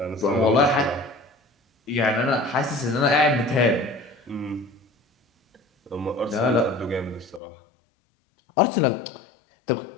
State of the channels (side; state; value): right; drops out; at 7.4 s